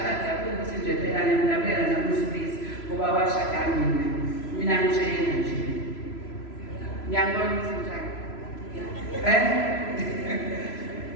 ukuthi nje phela ngiyamnabela namusibisi ngoba washada mina ngitshela nje. Ngiyangibona ukuthi njani.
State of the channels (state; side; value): late; right; 3.0 ms